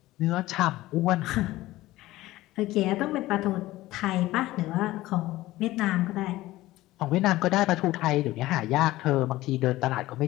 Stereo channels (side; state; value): right; quieter; 17.1 dB